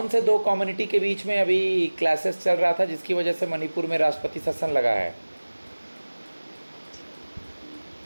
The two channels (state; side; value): inverted; both; correlation -1.00